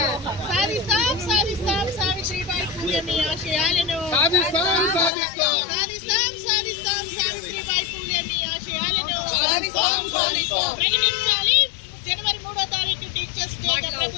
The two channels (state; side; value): drops out; right; at 5.1 s